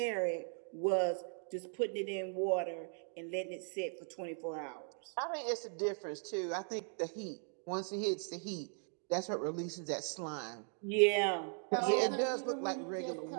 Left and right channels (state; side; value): silent; left; 52 dB below the other